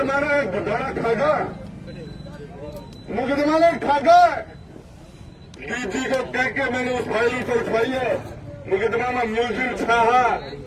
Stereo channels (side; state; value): both; identical; correlation 1.00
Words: ने घोटाला खागा, मुकदमा ने खागा, डीजी को कह के मैंने उस फाइल को उठवाई है। मुकदमा में मुलजिम छाहा